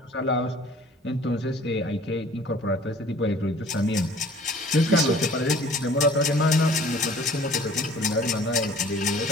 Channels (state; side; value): normal; both; correlation 0.50